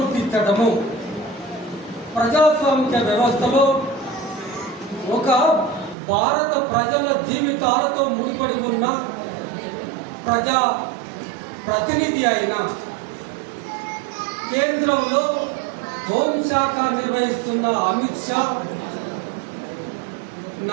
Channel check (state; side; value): drops out; left; at 6.0 s